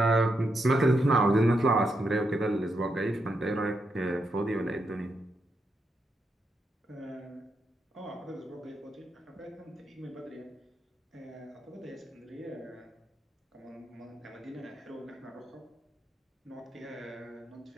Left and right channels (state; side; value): normal; both; correlation 0.82